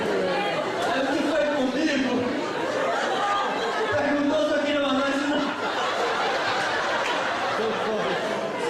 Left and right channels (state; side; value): identical; both; correlation 1.00